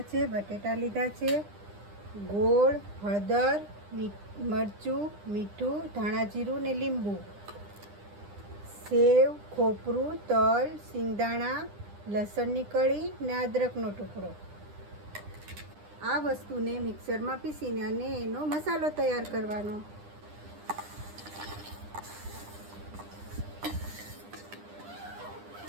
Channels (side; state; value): left; late; 9.9 ms